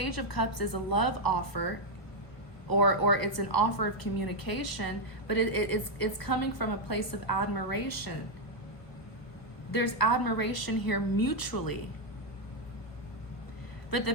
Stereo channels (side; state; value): right; late; 1.2 ms